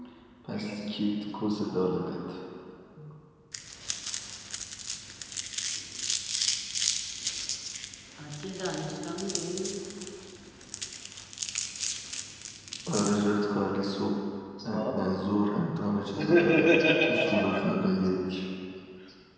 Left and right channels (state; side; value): identical; both; correlation 1.00